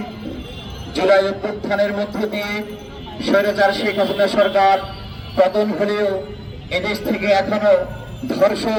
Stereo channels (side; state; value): both; identical; correlation 1.00